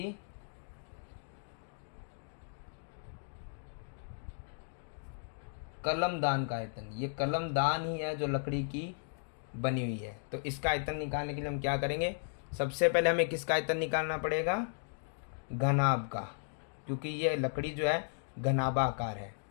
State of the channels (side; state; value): right; silent; digital silence